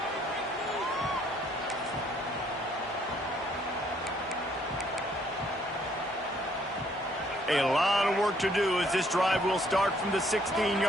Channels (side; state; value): both; normal; correlation 0.66